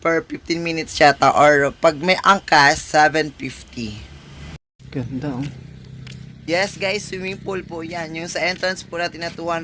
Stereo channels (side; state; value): both; identical; correlation 1.00